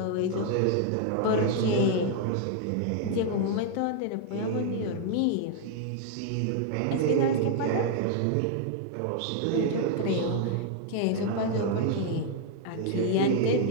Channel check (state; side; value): different; both; correlation 0.00